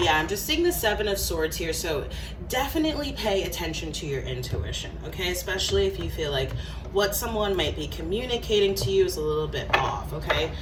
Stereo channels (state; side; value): identical; both; correlation 1.00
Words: yeah, I'm just seeing the Seven of Swords here, so definitely pay attention to your intuition, okay? Especially if you feel like what someone might be communicating to you is a little bit off, okay?